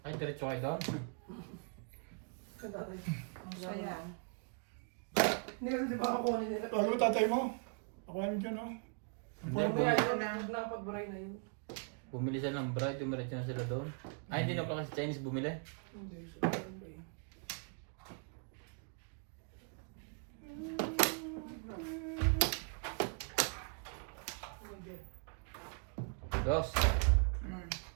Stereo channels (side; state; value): left; quieter; 39.9 dB